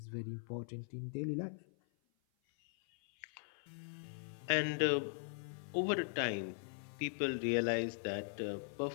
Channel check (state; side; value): silent; right; 51 dB below the other